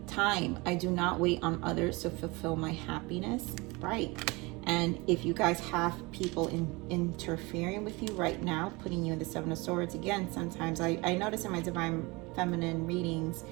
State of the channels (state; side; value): quieter; left; 24.7 dB